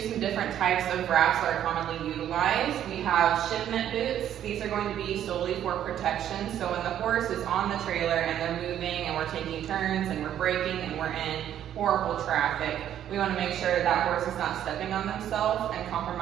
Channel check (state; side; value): quieter; left; 10.7 dB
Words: some different types of wraps that are commonly utilized, we have shipment boots. These are going to be solely for protection. So when the horse is on the trailer and they're moving and we're taking turns and we're braking and we're in horrible traffic, we want to make sure that that horse is not stepping on themselves and